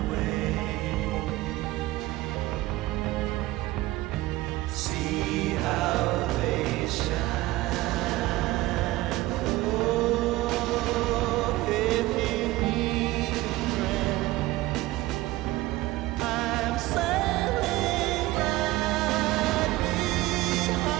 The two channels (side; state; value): left; quieter; 18.3 dB